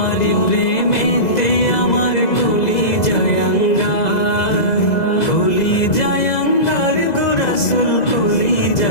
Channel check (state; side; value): late; right; 2.0 ms